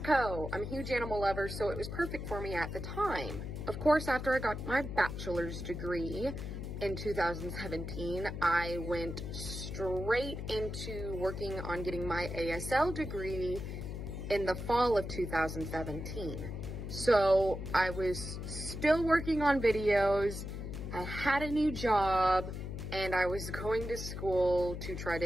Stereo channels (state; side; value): noise; left; hum, 6 dB below the sound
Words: I'm a huge animal lover, so it was perfect for me at the time. Of course, after I got my bachelor's degree in 2017, I went straight into working on getting my ASL degree in the fall of 2017. So I was still working on videos, I had a new job, and I was going to school to try